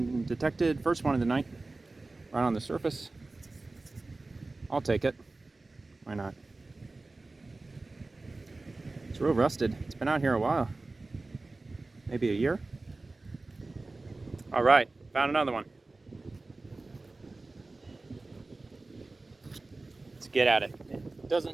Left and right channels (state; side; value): quieter; left; 3.3 dB